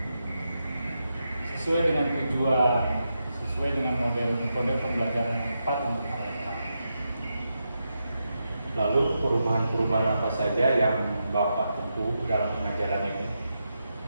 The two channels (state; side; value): inverted; both; correlation -0.86